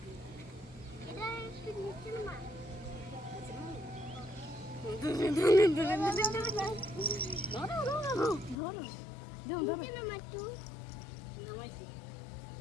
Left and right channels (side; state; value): right; drops out; at 8.6 s